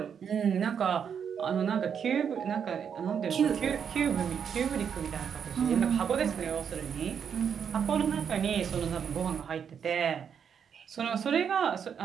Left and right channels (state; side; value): quieter; left; 7.5 dB